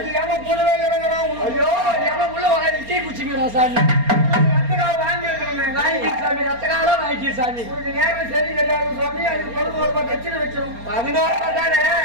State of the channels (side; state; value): left; late; 4.3 ms